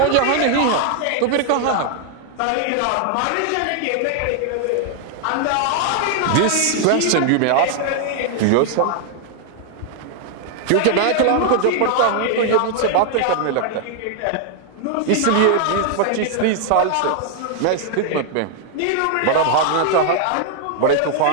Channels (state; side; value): different; both; correlation 0.00